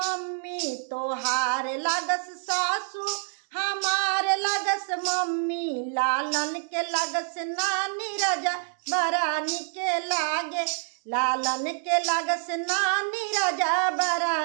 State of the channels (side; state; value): left; silent; 60 dB below the other